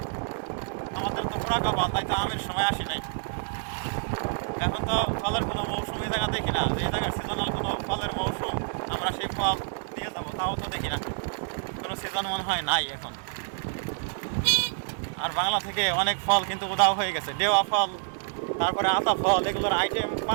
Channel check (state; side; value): silent; left; digital silence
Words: আমাদের তো পোড়া কপাল, তাই তো আমের সময় আসি নাই। এখন তো ফলের কোনো মৌসুম এই জায়গা দেখি না, যে জায়গায় সিজনাল কোনো ফলের মৌসুম আমরা সেই ফল দিয়ে যাবো তাও তো দেখি না, কোনো সিজন মনে হয় নাই এখন। আর বাংলা থেকে অনেক ফল কিন্তু উধাও হয়ে গেছে। দেওয়া ফল তারপরে আতা ফল, এগুলোর আইটেম